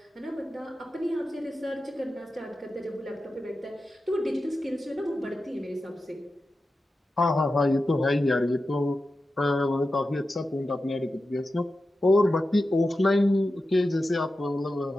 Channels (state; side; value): normal; both; correlation 0.92